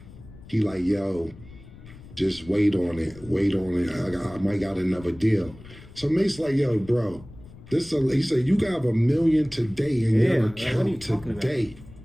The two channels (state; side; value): noise; left; rumble, 19 dB below the sound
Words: He like, yo, just wait on it. I might got another deal. So Mace like, yo, bro, he said, you got $1 million today in your account today.